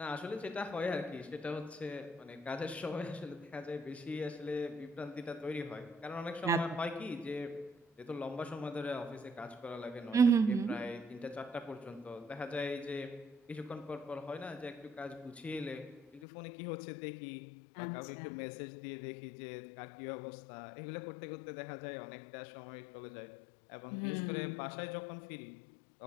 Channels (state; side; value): drops out; right; at 16.2 s